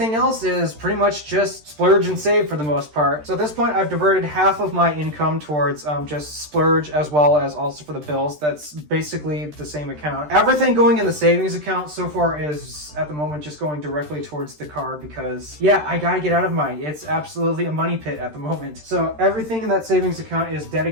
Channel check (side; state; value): left; late; 13 ms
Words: else is pretty much just splurge and save for the most part. So at this point, I've diverted half of my income towards just splurge as well as also for the bills. That's basically the same account. Everything going in the savings account so far is at the moment just going directly towards the car because, yeah, I gotta get out of mine. It's absolutely a money pit at the moment. So everything in that savings account is